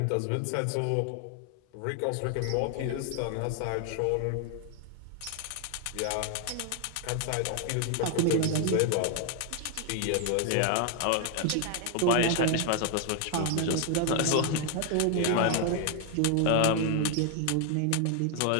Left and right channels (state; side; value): different; both; correlation 0.00